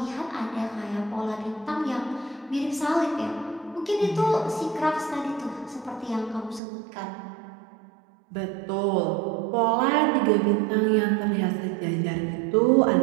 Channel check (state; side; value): drops out; left; at 6.6 s